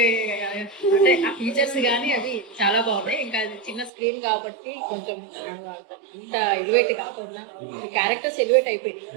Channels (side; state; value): left; drops out; at 3.9 s